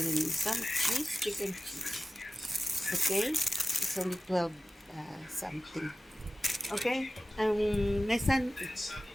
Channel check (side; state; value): both; normal; correlation 0.95